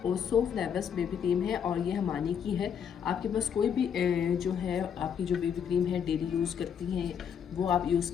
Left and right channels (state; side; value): quieter; right; 7.8 dB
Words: ओसो फ्लेवर्स बेबी क्रीम है और ये हमानी की है। आपके पास कोई भी जो है आपकी जो बेबी क्रीम है डेली यूज़ करती हैं वो आप यूज़